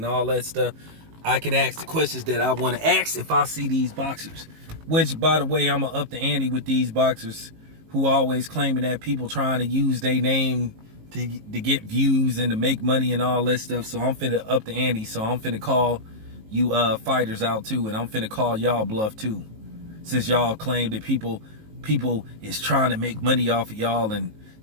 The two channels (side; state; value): left; late; 19 ms